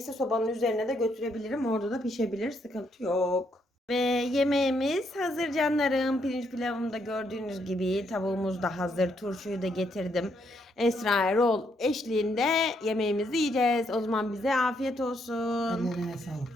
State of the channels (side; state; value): both; normal; correlation 0.75